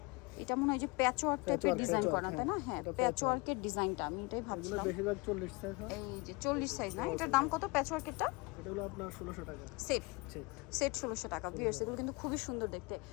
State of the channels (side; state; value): right; quieter; 26.9 dB